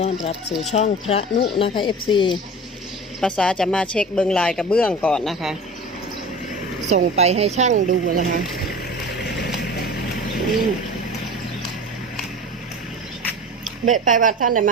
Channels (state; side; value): normal; both; correlation 0.35